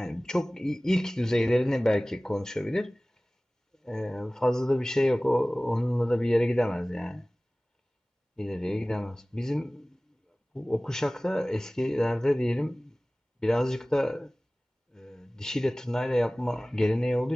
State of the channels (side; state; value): both; normal; correlation 0.98